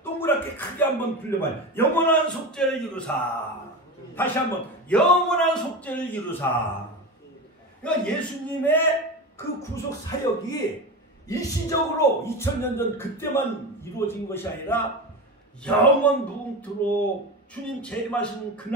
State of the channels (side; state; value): both; normal; correlation 0.24